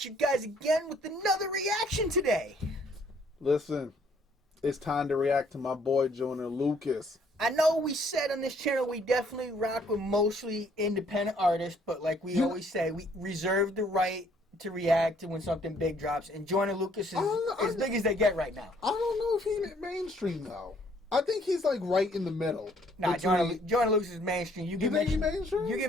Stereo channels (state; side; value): normal; both; correlation 0.64